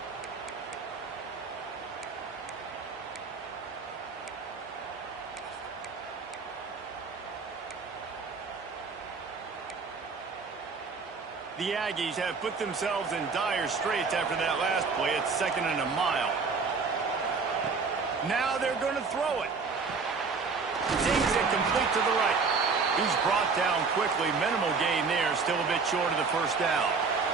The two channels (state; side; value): quieter; left; 4.8 dB